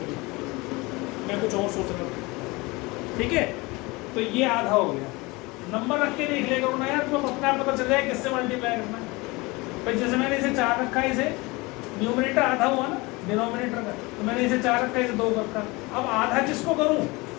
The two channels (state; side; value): quieter; right; 24.0 dB